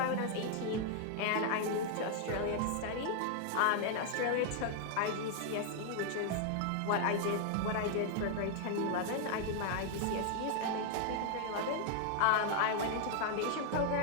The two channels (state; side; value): different; both; correlation 0.00